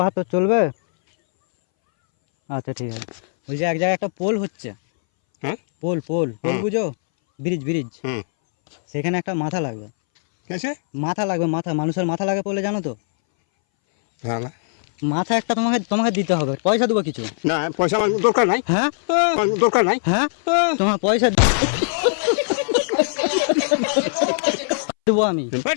চলবে? আচ্ছা ঠিক আছে। বলছি এক জায়গায় একটা পোল হচ্ছে। হ্যাঁ পোল পোল পোল হুম। বুঝো? Bridge bridge. হুম সেখানে একটা মাথা লাগবে। কেসে? মাথা লাগবে, মাথা মানুষের মাথা লাগে পোলে, জানো তো? ভালো মাথা একটা তোমাকে তোমাকে দিতে হবে, পয়সা দেবো কিছু। না, পয়সা আমার দরকার নাই। হ্যাঁ আমার দরকার নাই। হ্যাঁ তোমার পয়সা দেবো আমি।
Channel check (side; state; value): right; silent; 62 dB below the other